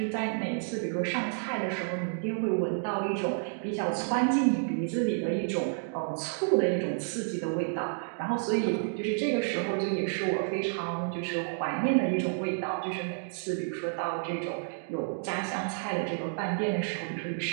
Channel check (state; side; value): silent; left; digital silence